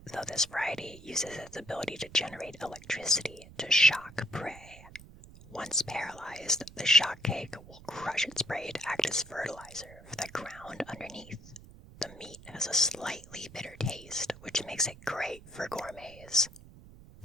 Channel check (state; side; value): noise; right; rumble, 19 dB below the sound